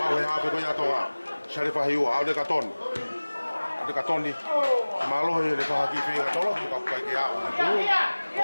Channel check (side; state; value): both; inverted; correlation -1.00